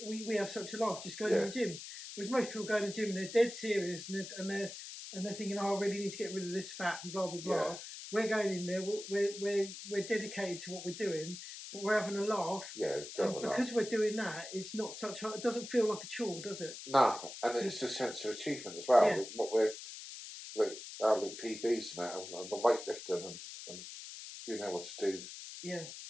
have such a laugh just going to the gym. Whereas most people go to the gym and they're dead serious and they're thinking, oh, I really need to get rid of this fat and blah blah blah. Yeah. We're going in there. We're dedicated to what we're doing, but we're having a laugh. Yeah, because we're doing that, it's not such. It doesn't feel like a chore, does it? No, and it's a sense of achievement as well. Yeah. What we're like our PBs and that, and the weightlifting and being able to do. Yeah.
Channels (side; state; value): left; noise; hiss, 11 dB below the sound